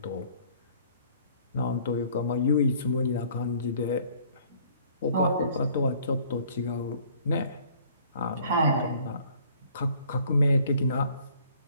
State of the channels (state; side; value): inverted; both; correlation -0.57